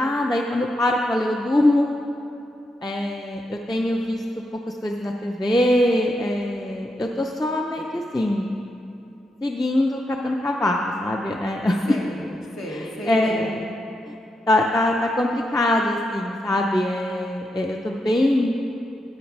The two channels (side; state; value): both; normal; correlation 0.84